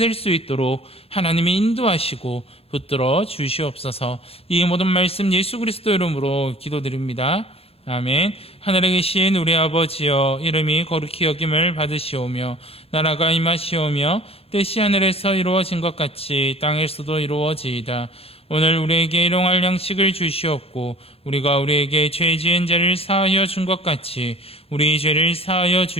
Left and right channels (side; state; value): right; late; 0.28 ms